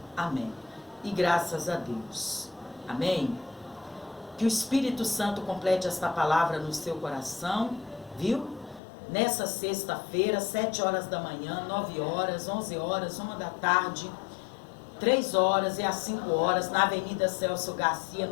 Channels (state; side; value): drops out; right; at 8.8 s